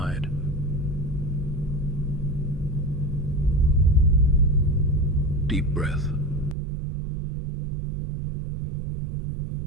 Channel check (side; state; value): left; drops out; at 6.6 s